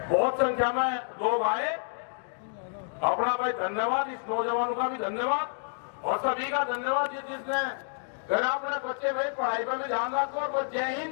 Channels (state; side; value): silent; right; digital silence